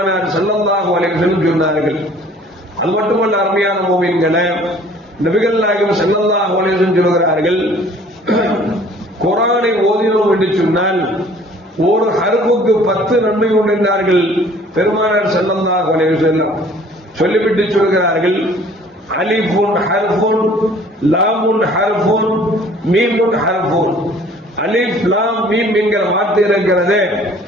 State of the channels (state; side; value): normal; both; correlation 0.53